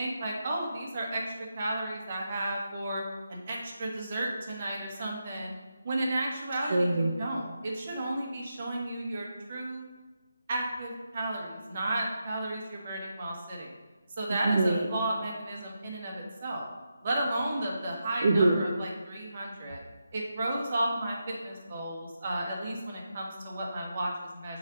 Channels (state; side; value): inverted; both; correlation -0.86